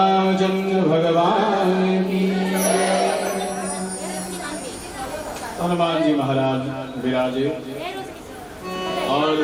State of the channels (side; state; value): both; identical; correlation 1.00